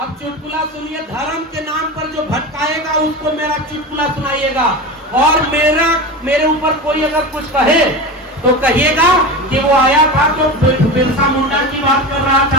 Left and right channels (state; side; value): normal; both; correlation 0.26